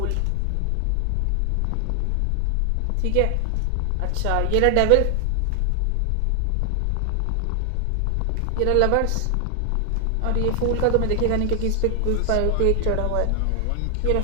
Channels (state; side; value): different; both; correlation 0.00